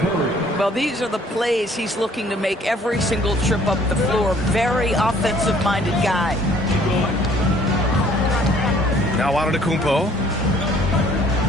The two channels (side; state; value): both; normal; correlation 0.58